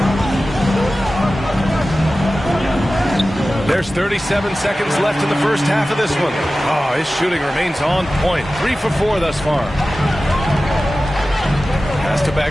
There's 37 seconds left in the first half of this one. Oh, his shooting remains on point. 3 for 4 thus far. Pass to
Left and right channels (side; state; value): both; normal; correlation 0.95